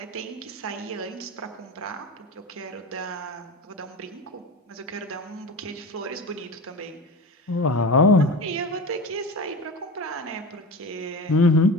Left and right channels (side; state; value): both; normal; correlation 0.28